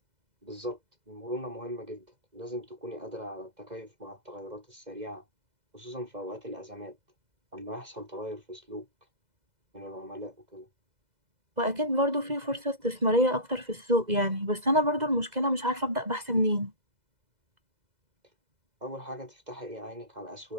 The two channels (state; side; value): late; left; 2.0 ms